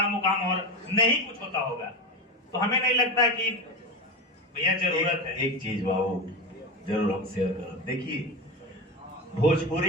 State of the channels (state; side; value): normal; both; correlation 0.21